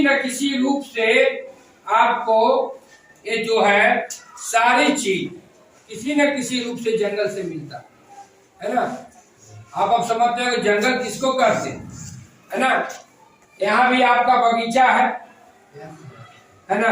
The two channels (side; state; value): both; identical; correlation 1.00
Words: न किसी रूप से आपको ये जो है सारी चीज किसी न किसी रूप से जंगल से मिलता है ना। आप अब समझते हैं कि जंगल किसको कहते हैं, है ना। यहाँ भी आपका बगीचा है ना।